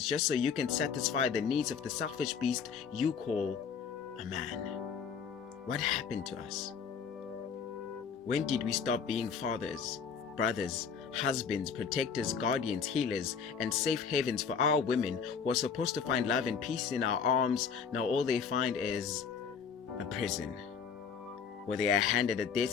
just so you can satisfy the needs of the selfish beast you call a man. What happened to us? When did we stop being fathers, brothers, husbands, protectors, guardians, healers, and safe havens for our women who are supposed to find love and peace in our arms? Now all they find is a prison, where they are handed a death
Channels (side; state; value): right; quieter; 6.4 dB